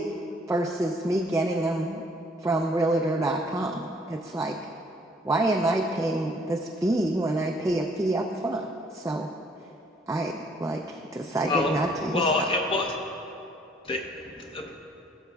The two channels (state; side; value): normal; both; correlation 0.63